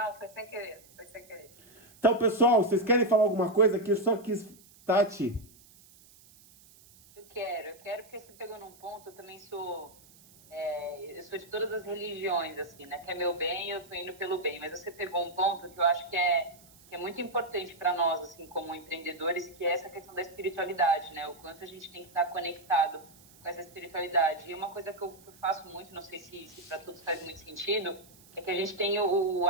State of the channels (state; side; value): noise; right; hiss, 25 dB below the sound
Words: foi sem querer, foi sem querer. Então, pessoal, vocês querem falar alguma coisa? Que eu só quis... Tati. Eu quero porque você pegou num ponto, eu também sou... eu sou de todas as religiões, assim, né? Que é meu bem, eu tô indo pelo bem. Mas você pegou um ponto que eu acho que é muito importante para nós, assim, como empreendedores, que é essa questão da espiritualidade, né? O quanto a gente tem que estar conectado com essa espiritualidade. E uma coisa que eu faço muito, não sei se para todos faz muito sentido, é que a gente tem o